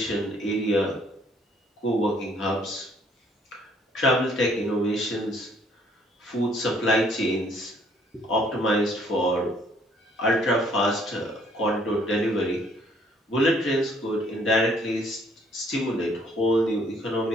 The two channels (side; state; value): both; normal; correlation 0.63